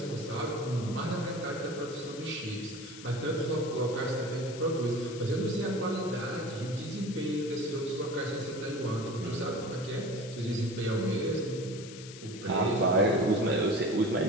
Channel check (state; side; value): noise; left; hiss, 15 dB below the sound